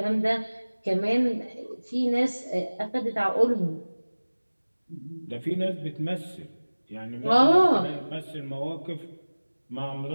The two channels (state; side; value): inverted; both; correlation -1.00